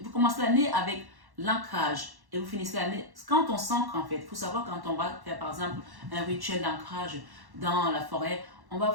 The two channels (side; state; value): left; late; 1.1 ms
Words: Vous commencez l'année avec l'ancrage. Et vous finissez l'année. Quand on s'ancre, en fait, il faut savoir quand on va faire, par exemple, un rituel d'ancrage dans la forêt, on